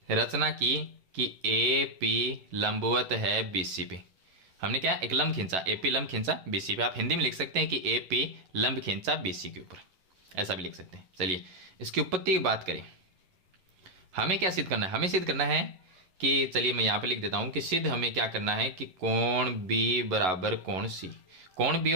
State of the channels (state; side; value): late; left; 11 ms